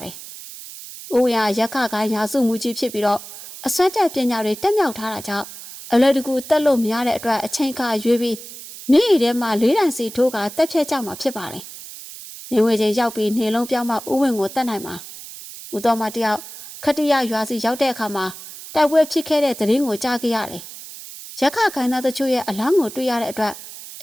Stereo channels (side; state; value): right; noise; hiss, 14 dB below the sound